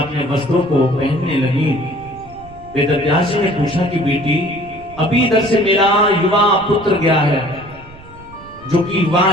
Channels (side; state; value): right; noise; rumble, 20 dB below the sound